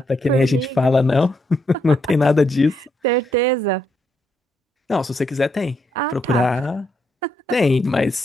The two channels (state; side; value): normal; both; correlation 0.77